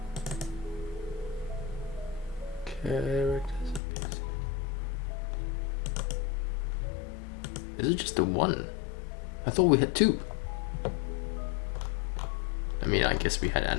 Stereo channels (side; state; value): right; drops out; at 3.8 s